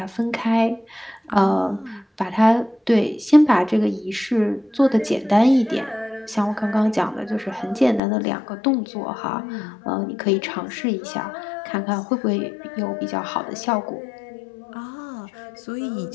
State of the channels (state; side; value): drops out; right; at 8.0 s